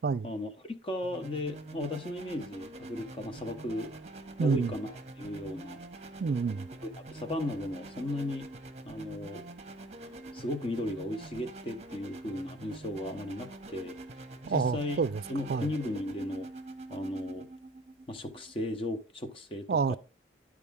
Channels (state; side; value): normal; both; correlation 0.51